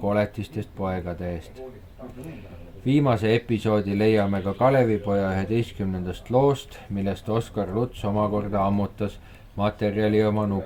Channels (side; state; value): both; identical; correlation 1.00